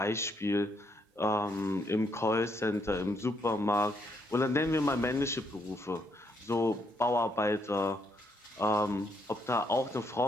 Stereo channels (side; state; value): both; normal; correlation 0.74